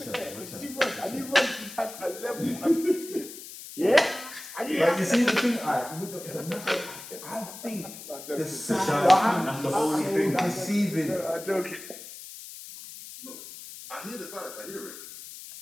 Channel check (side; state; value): left; noise; hiss, 13 dB below the sound